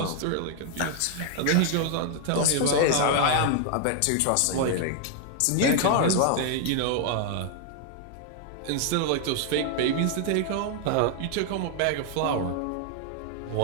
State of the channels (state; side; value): different; both; correlation 0.00